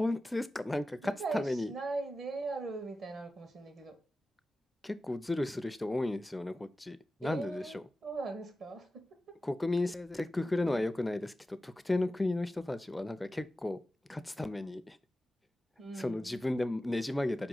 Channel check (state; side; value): normal; both; correlation 0.94